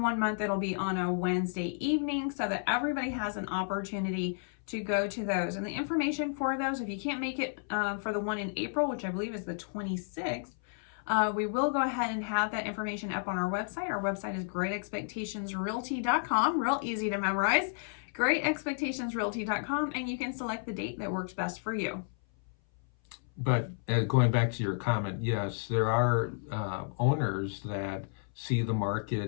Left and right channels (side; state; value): right; silent; 57 dB below the other